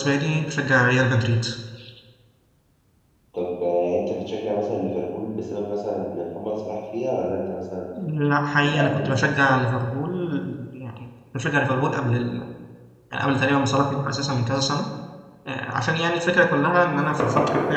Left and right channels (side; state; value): both; identical; correlation 1.00